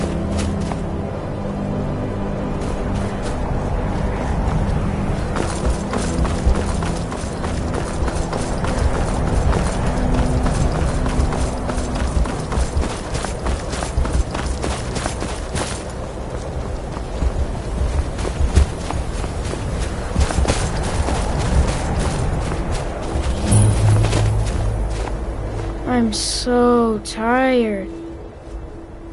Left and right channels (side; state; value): both; identical; correlation 1.00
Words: I'm so tired.